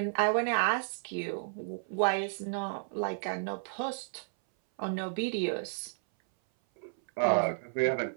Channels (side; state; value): left; silent; 56 dB below the other